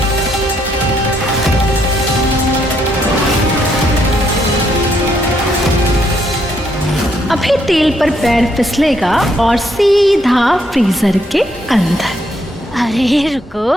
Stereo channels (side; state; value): both; normal; correlation 0.73